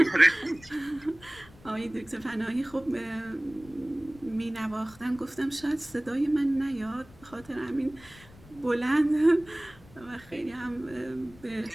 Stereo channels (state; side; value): noise; left; rumble, 22 dB below the sound